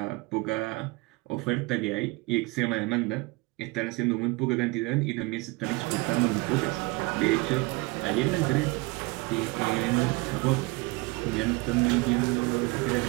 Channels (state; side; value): quieter; left; 24.4 dB